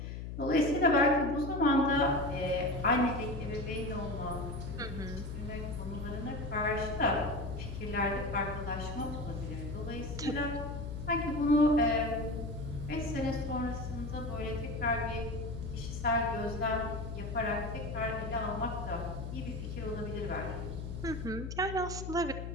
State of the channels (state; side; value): noise; left; hum, 6 dB below the sound